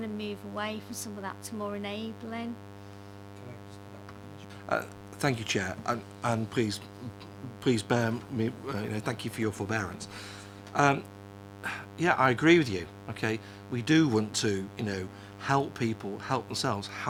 to move away from some of that to more enabling. Thank you, Chair, and please bear me, you know, thank you for your forbearance. Yeah, I agree with you. Okay, we do want to, you know, help people help themselves.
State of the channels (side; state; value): both; identical; correlation 1.00